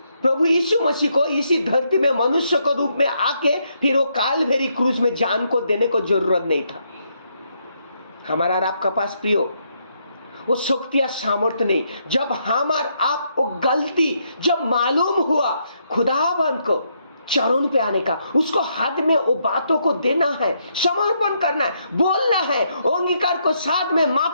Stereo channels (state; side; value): inverted; both; correlation -0.76